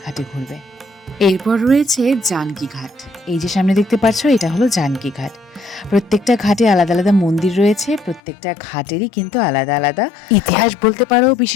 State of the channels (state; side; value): drops out; right; at 8.2 s